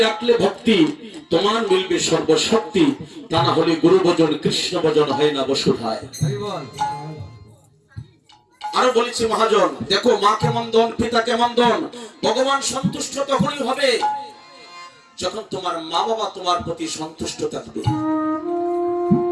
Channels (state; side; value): identical; both; correlation 1.00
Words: রাখলে ভক্তি তোমার মিলবে সর্বশক্তি, তা না হলে গুরু ভজন কৃষ্ণ ভজন হয় না বসুধায়। আরো বলেছি মহাজন, দেখো মা কেমন ধন, পিতা কেমন ধন। ভগবান সন্তুষ্ট তখনই হবে যখন তোমার মা বাবা তোমার প্রতি সন্তুষ্ট থাকবে।